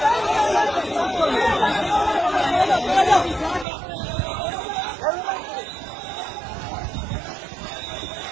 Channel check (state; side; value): drops out; left; at 3.7 s